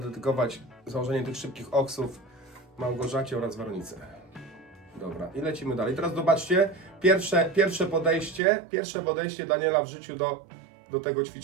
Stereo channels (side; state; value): left; drops out; at 8.4 s